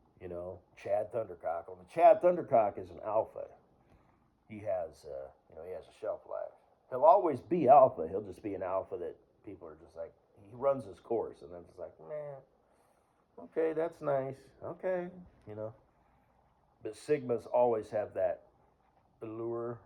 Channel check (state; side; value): identical; both; correlation 1.00